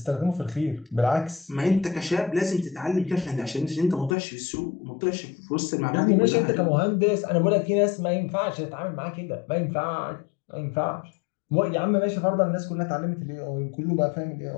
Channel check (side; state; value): right; drops out; at 4.2 s